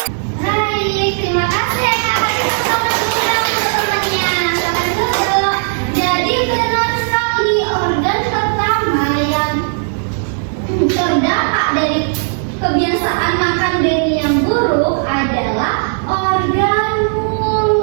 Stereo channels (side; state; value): left; silent; 65 dB below the other